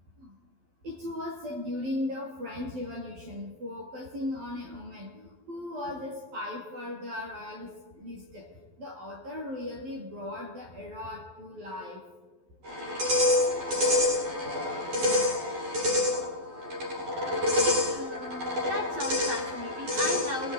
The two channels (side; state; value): left; late; 12 ms